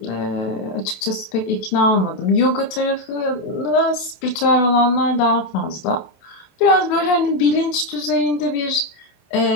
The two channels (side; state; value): right; late; 28 ms